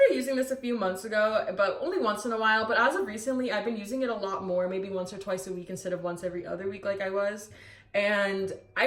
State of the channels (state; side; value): identical; both; correlation 1.00